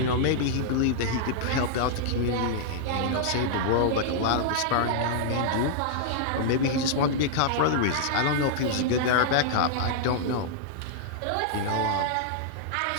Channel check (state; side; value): different; both; correlation -0.01